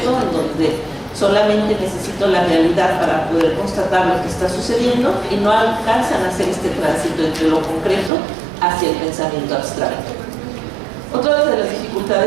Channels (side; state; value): left; drops out; at 8.1 s